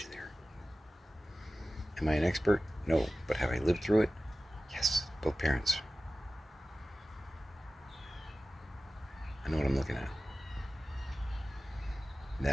there. Am I an expert? No. But have I lived through it? Yes. Both parents. I know what I'm looking at.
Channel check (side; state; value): both; normal; correlation 0.95